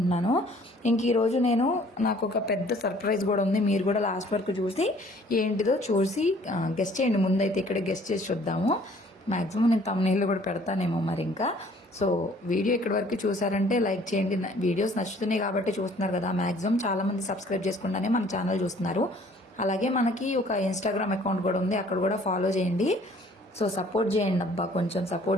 ఇంక ఈరోజు నాకు ఒక పెద్ద సర్ప్రైజ్ కూడా ఉంది. మీరు కూడా లాస్ట్ వరకు చూసి ఏంటిదో చూసి గెస్ట్ చేయండి. ముందైతే ఇక్కడ గెస్ట్ చేసి చూద్దాము. మ్యాక్సిమం నేను తమ్నెయిల్లో కూడా పెడతానేమో మరి. ఇంకా సో వీడియో ఇక్కడి వరకు చూసారంటే లైక్ చేయండి. వీడియోస్ నచ్చుతున్నాయి కాబట్టి చూస్తున్నారు కదా. మ్యాక్సిమం చాలా మంది సబ్స్క్రైబ్ చేసుకుంటానే మన ఛానల్ చూస్తున్నారు. అలాగే మనకి ఒక ఇన్స్టాగ్రామ్ అకౌంట్ కూడా ఉంది, అక్కడ కూడా ఫాలో చేయండి. సో సపోర్ట్ చేయండి అబ్బా, కొంచెం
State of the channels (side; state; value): both; normal; correlation 0.56